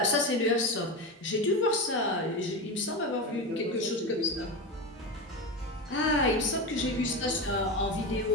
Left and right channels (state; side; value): normal; both; correlation 0.19